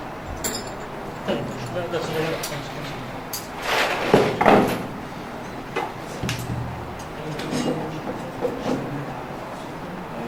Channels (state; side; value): identical; both; correlation 1.00